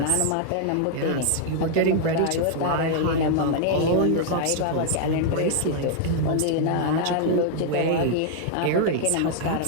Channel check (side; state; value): both; different; correlation -0.01